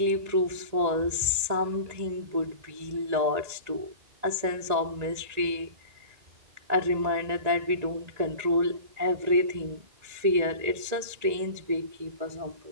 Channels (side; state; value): left; late; 1.9 ms